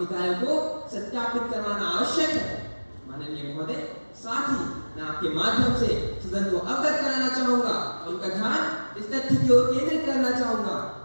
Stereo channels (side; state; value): both; inverted; correlation -1.00